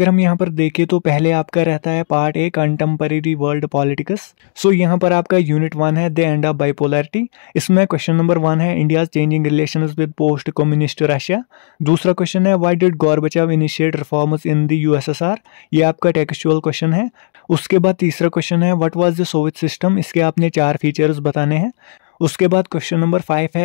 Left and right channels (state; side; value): silent; right; digital silence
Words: हम यहाँ पर देखें तो पहले आपका रहता है part A contemporary world politics. So यहाँ पर आपका यूनिट 1 है द एंड ऑफ बाइपोलैरिटी। इसमें क्वेश्चन नंबर 1 है India's changing relations with post communist Russia. दूसरा क्वेश्चन है why did Gorbachev initiate reforms in the USSR. ये आपका टेक्सचुअल क्वेश्चन है। उसके बाद तीसरा क्वेश्चन है what was the Soviet system. इसके आपने 4 फीचर्स बताने हैं। उसके बाद क्वेश्चन नंबर 5